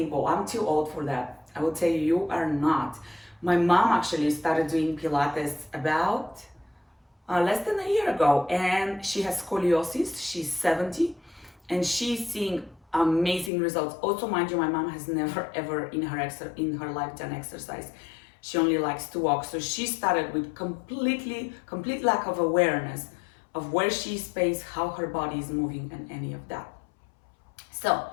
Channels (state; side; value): drops out; right; at 13.5 s